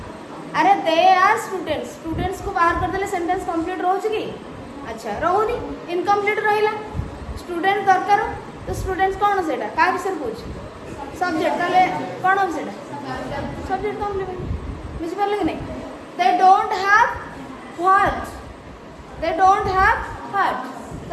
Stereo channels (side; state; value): both; identical; correlation 1.00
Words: अरे दे आर स्टूडेंट्स स्टूडेंट्स को बाहर कर देले सेंटेंस कंप्लीट रहउची की अच्छा रहउनी इनकम्प्लीट रहिला स्टूडेंट दरकार तो स्टूडेंट्स कौन सेटा का विषय पूछ सब्जेक्ट ताले कौन हो सेटा सब्जेक्ट कंप्लीमेंट बुझि परले कि नहीं दे don't have what they don't have what